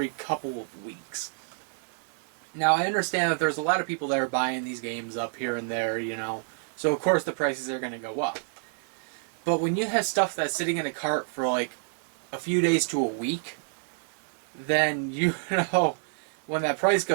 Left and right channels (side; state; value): left; silent; digital silence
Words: couple of weeks. Now, I understand that there's a lot of people that are buying these games up here and there, so of course the prices are going to go up. But when you have stuff that's sitting in a cart for like a few days to a week, then when that price